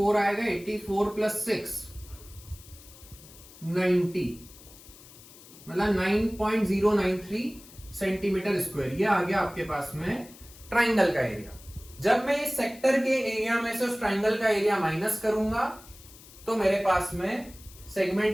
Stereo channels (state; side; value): noise; left; hiss, 21 dB below the sound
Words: आएगा, 84 प्लस 6 90 मतलब 9.093 सेंटीमीटर स्क्वायर। ये आ गया आपके पास में ट्राइंगल का एरिया। जब मैं इस सेक्टर के एरिया में से उस ट्राइंगल का एरिया माइनस करूंगा तो मेरे पास में